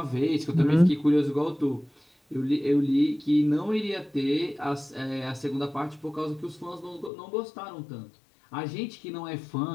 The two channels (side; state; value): right; drops out; at 7.1 s